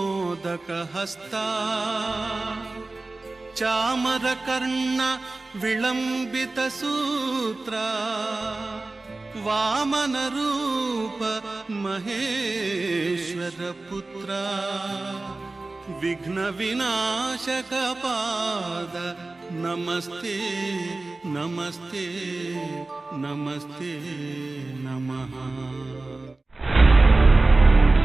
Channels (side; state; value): left; quieter; 3.2 dB